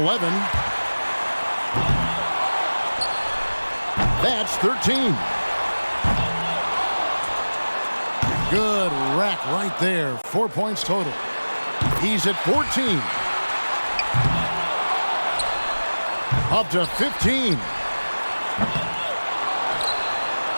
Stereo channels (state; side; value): inverted; both; correlation -1.00